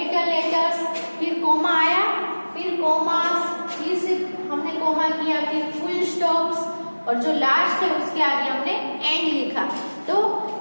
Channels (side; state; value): both; inverted; correlation -1.00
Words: लेटर्स, फिर कोमा आया, फिर कोमास, फिर से हमने कोमा किया, फिर फुल स्टॉप्स, और जो लास्ट है उसके आगे हमने एंड लिखा। तो